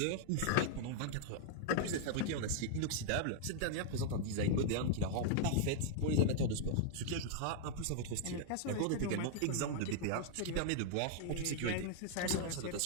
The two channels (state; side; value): different; both; correlation -0.01